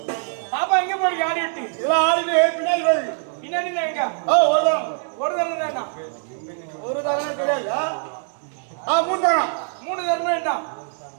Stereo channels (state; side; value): silent; left; 61 dB below the other